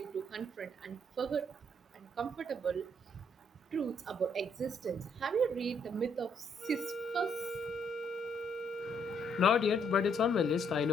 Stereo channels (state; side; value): normal; both; correlation 0.70